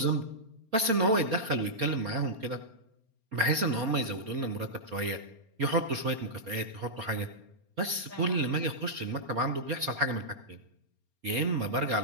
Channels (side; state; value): left; late; 4.3 ms